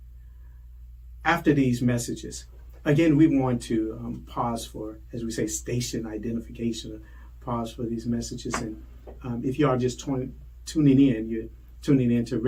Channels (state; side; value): identical; both; correlation 1.00